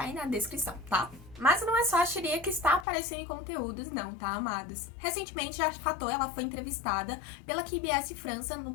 aí na descrição, tá? Mas não é só a Shiria que está aparecendo em conteúdos não, tá, amados? Recentemente a Fatou, ela foi entrevistada pela KBS França no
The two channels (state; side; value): drops out; right; at 2.9 s